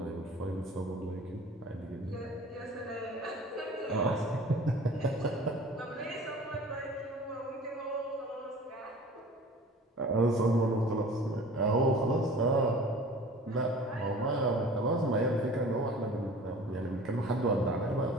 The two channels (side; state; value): both; normal; correlation 0.44